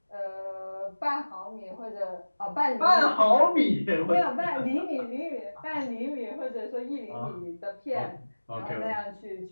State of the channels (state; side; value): inverted; both; correlation -1.00